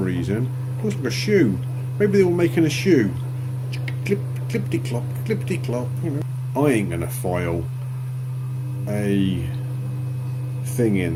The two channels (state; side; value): identical; both; correlation 1.00